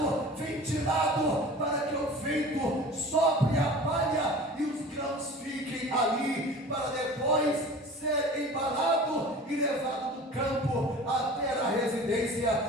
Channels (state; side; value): normal; both; correlation 0.40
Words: ventilado, para que o vento sopre a palha e os grãos fiquem ali, para depois ser embalado e levado do campo até a residência